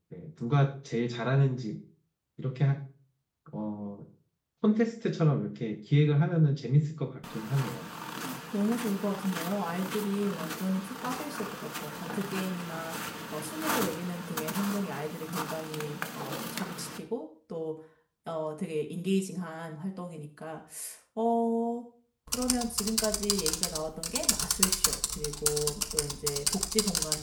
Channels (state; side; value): identical; both; correlation 1.00